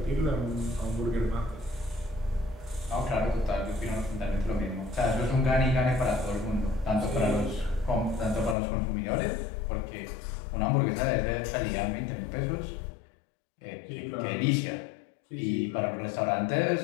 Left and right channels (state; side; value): drops out; right; at 8.6 s